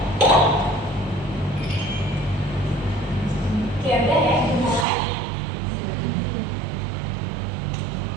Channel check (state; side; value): drops out; left; at 4.9 s